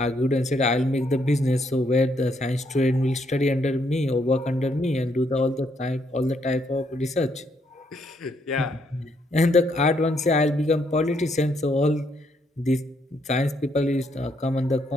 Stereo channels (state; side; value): normal; both; correlation 0.73